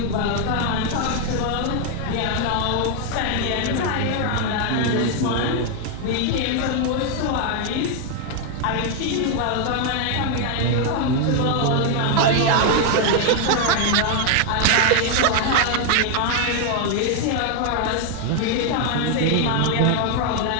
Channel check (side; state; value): both; different; correlation 0.00